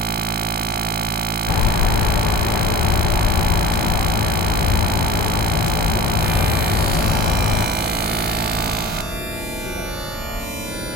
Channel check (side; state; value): both; normal; correlation 0.38